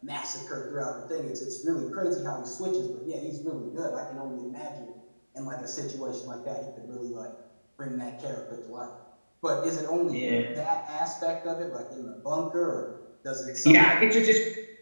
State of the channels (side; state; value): both; inverted; correlation -1.00